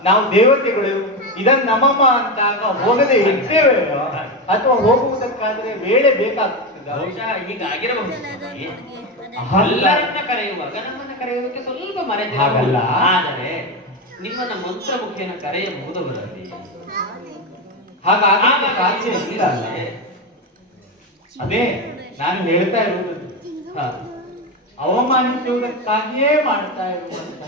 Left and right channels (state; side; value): normal; both; correlation 0.15